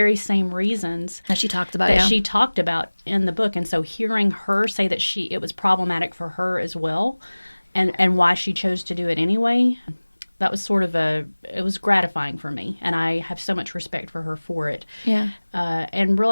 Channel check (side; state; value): both; inverted; correlation -1.00